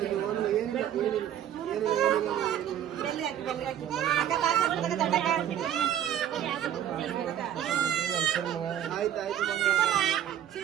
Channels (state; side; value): quieter; left; 10.5 dB